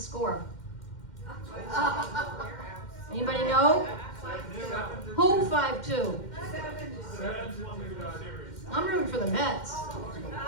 Anybody know? Who 5-2? I'm rooting for the Mets.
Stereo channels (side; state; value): right; late; 2.1 ms